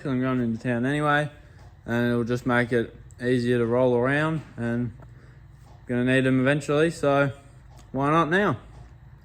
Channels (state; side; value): identical; both; correlation 1.00